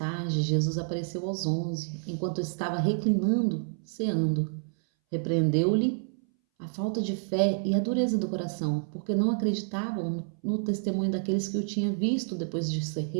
Jesus apareceu aos 11, enquanto estava reclinando, ceando. Repreendeu-lhe a falta de fé e a dureza do coração, porque não acreditavam no testemunho daqueles que o tinham visto depois de ser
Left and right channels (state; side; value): silent; left; 59 dB below the other